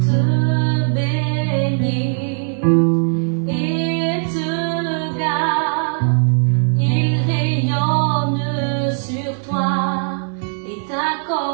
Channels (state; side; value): silent; left; 55 dB below the other